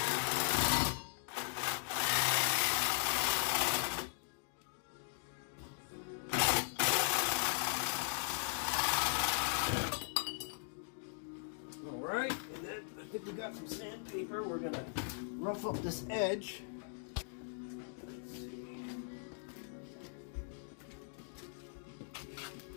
Alright, and then I think we got some sandpaper. We're gonna rough up this edge. Let's see.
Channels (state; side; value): silent; right; digital silence